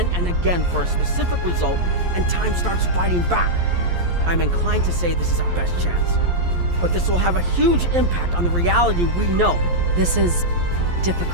and again for a specific result, and time starts fighting back. I'm inclined to say this is our best chance. But this will have a huge impact on the reality we know. This is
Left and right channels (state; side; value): late; left; 11 ms